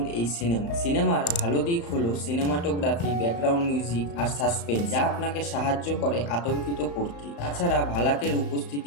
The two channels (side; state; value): right; late; 35 ms